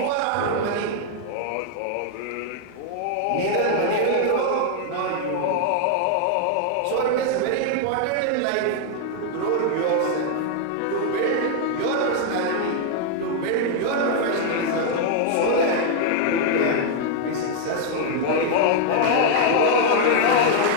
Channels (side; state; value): both; different; correlation 0.00